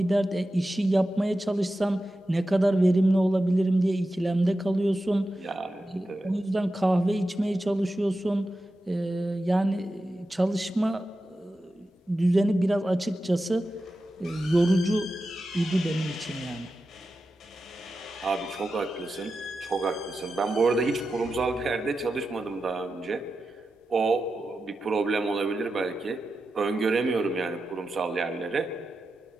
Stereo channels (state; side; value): normal; both; correlation 0.91